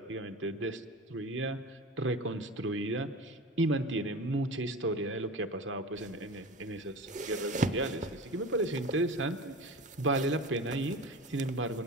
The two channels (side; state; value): both; normal; correlation 0.33